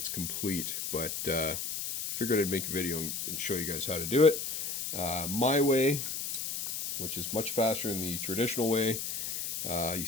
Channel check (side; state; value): left; noise; hiss, 4 dB below the sound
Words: complete, but figured I'd make a video and show you guys how to do it. My way, which is much faster than the traditional way. You